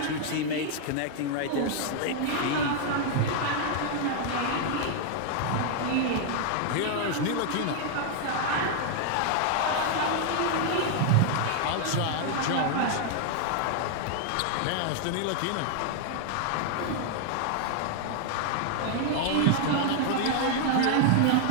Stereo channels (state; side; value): different; both; correlation 0.00